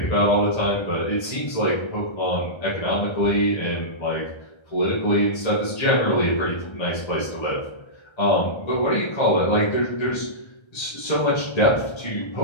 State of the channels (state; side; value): late; right; 1.3 ms